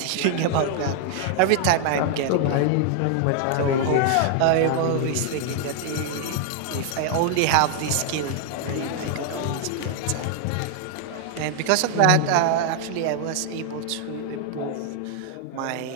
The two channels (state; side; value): different; both; correlation 0.00